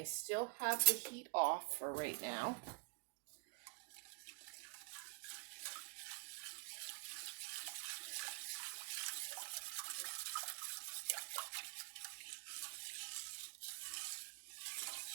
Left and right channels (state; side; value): quieter; left; 32.8 dB